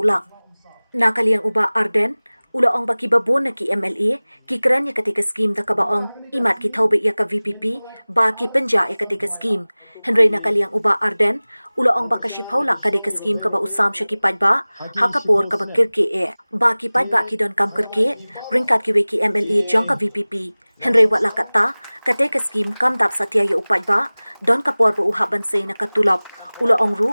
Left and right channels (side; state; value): both; inverted; correlation -1.00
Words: nakaliang uba Arden ula ong baki babon na ki MLA ki kran ya ketika scheme da kabaong imat ki thaube ya ka VPP ba ki penja ya ketika scheme Henry nakaliang uba Arden ula ong baka shipaula kadika scheme kaba usam sya ki padba hakapor kaba kirke e ba ki padba ki don kam kirke ringkat ki we ki MLA jong ka VPP Henry wat lakata kadika scheme kam dap satya ya upadba don kapor ba uhaban say na katulap ula ong ru